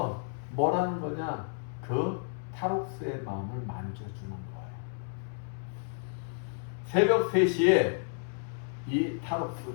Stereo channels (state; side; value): silent; right; 56 dB below the other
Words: 뭐라는 거냐? 그 탈옥수의 마음을 만져주는 거예요. 새벽 3시에 이